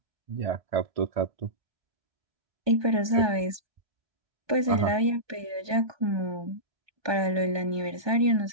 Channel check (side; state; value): left; late; 1.2 ms